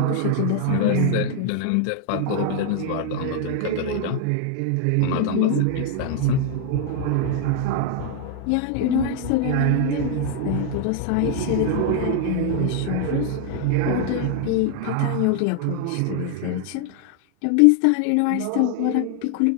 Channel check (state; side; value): different; both; correlation 0.00